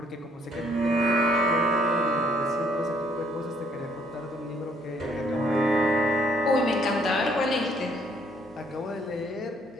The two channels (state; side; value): normal; both; correlation 0.66